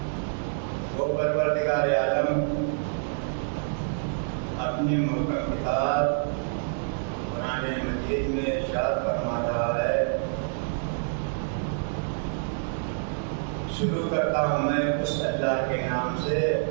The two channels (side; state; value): left; silent; digital silence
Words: وہ پروردگار عالم اپنی محکم کتاب قرآن مجید میں ارشاد فرما رہا ہے، شروع کرتا ہوں میں اس اللہ کے نام سے